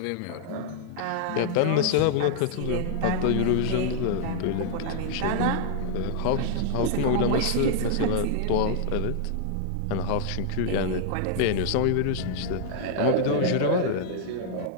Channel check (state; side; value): different; both; correlation -0.01